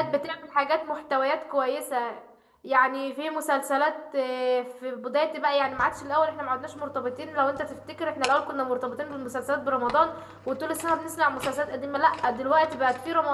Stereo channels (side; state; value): both; identical; correlation 1.00